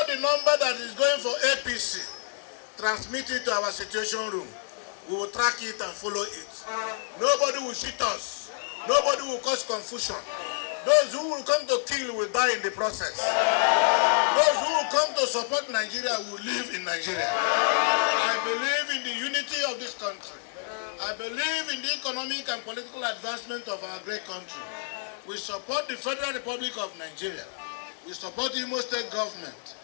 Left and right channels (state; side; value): silent; right; 59 dB below the other